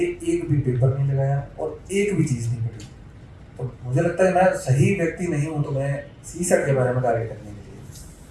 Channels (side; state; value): both; identical; correlation 1.00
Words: एक भी पेपर नहीं लगाया और एक भी चीज़ नहीं पढ़ी, तो मुझे लगता है मैं सही व्यक्ति नहीं हूँ तो मैं सी सेट के बारे में कार्य करने के लिए,